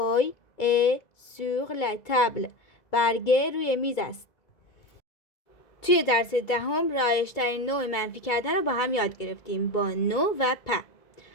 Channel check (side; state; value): right; late; 2.0 ms